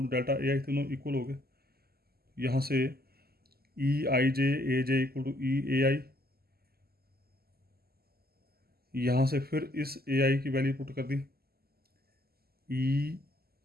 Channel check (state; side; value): late; left; 0.45 ms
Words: to delta a i, तीनों इक्वल हो गए. यहाँ से ई आई j a j equal to E a आई, यहाँ से फिर इस ए आई की वैल्यू पुट कर दी,